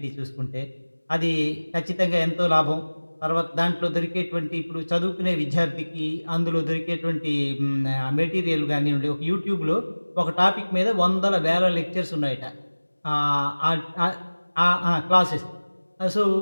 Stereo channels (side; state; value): both; inverted; correlation -1.00